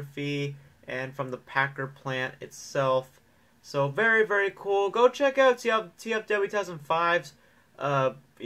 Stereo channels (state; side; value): identical; both; correlation 1.00